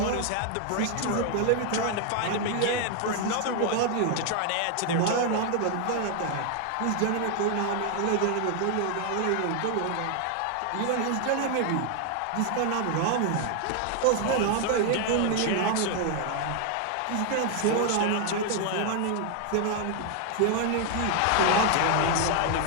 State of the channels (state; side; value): different; both; correlation 0.00